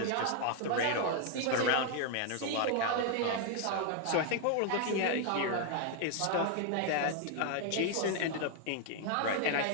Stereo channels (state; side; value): different; both; correlation 0.00